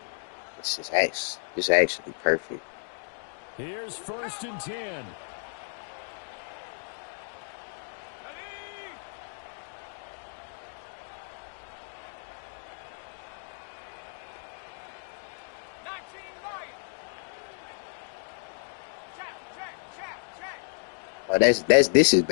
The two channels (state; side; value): silent; right; digital silence